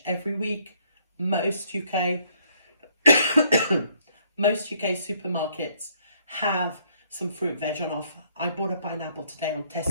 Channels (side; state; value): both; inverted; correlation -0.67